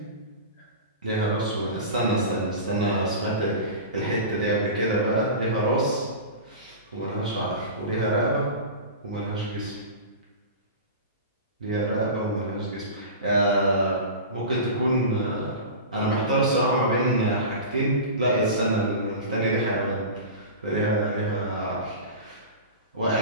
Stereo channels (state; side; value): inverted; both; correlation -0.30